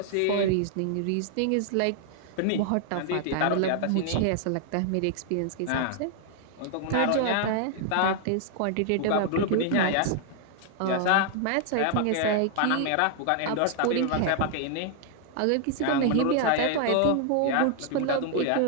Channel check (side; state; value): both; different; correlation 0.00